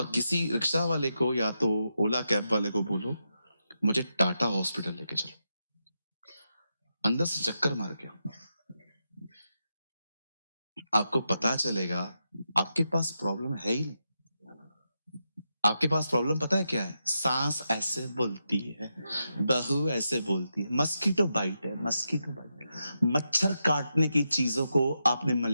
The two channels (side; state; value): both; inverted; correlation -0.86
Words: किसी रिक्शा वाले को या तो ओला कैब वाले को बोलो, मुझे टाटा हॉस्पिटल लेके चलो। अंदर से चक्कर मार के आओ। आपको पता चलेगा आपके पास प्रॉब्लम है ही नहीं। आपके पास प्रॉब्लम पता है क्या है? सांस ऐसे बोलती है, बहू ऐसे बोलती है, मस्कीटो बाइट है, मस्कीटो बाइट। मच्छर काटने की चीजों को आपने